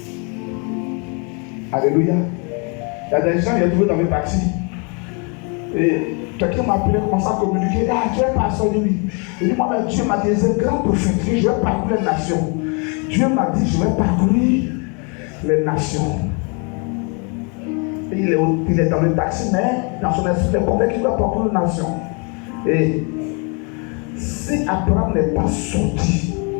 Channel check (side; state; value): right; quieter; 34.9 dB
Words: Alléluia. Il y a des gens, il y a trouvé dans mes taxis. Et quelqu'un m'a appelé, commencé à communiquer. Ah, tu es pasteur, oui. Il dit, moi, mais Dieu m'a dit, c'est un grand prophète. Je vais parcourir les nations. Dieu m'a dit, je vais parcourir les nations. Et il est dans le taxi, mais dans son esprit, il est convaincu qu'il doit parcourir les nations. Et si Abraham n'est pas sorti,